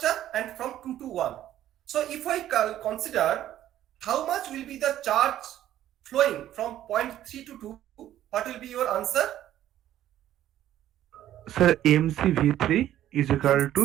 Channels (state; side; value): quieter; left; 12.4 dB